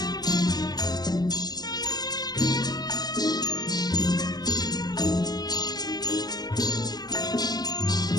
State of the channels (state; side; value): late; right; 0.19 ms